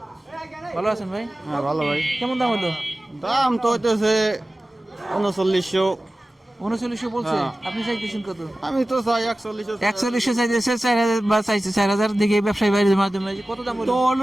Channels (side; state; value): both; normal; correlation 0.96